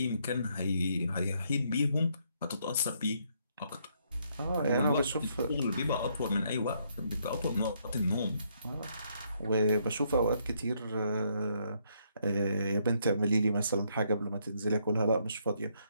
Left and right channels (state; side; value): inverted; both; correlation -0.73